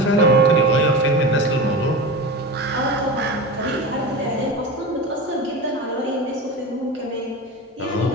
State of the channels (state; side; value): normal; both; correlation 0.27